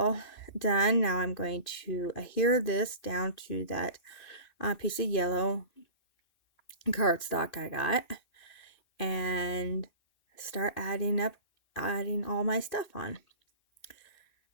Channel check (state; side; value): late; right; 2.6 ms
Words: done. Now I'm going to adhere this down to that piece of yellow cardstock I got and start adding all my stuff on.